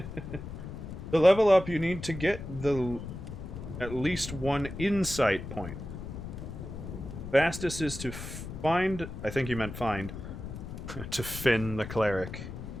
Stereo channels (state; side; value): noise; left; rumble, 9 dB below the sound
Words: To level up, you need to get the at least one insight point. Fastest is to find... I think you meant find. To Finn the cleric.